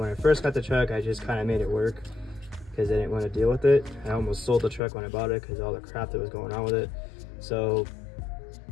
when I first got the truck, I just kind of made it work because I didn't want to deal with it. I almost sold the truck when I bought it because all the crap that was going on with it. So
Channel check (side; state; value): right; drops out; at 4.8 s